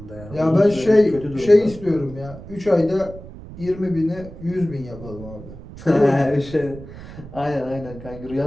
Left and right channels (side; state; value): right; noise; rumble, 15 dB below the sound